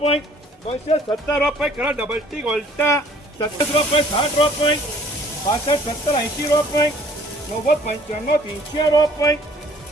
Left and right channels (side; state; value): both; normal; correlation 0.56